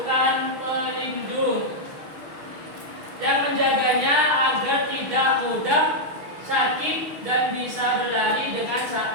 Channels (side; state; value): left; late; 6.4 ms